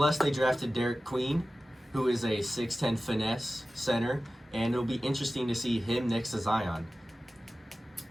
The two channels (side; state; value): both; normal; correlation 0.95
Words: they drafted Derek Queen, who is a 6'10 finesse center, and it'll be interesting to see him next to Zion.